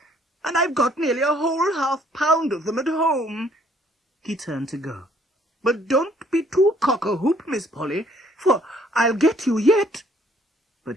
"and I've got nearly a whole half-pound of them at home." He turned to go. "But don't be too cock-a-hoop, Miss Polly, for I'll get you yet."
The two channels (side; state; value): both; normal; correlation 0.63